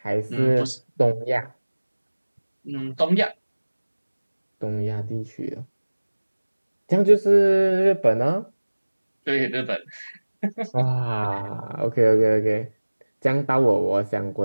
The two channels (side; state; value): both; inverted; correlation -1.00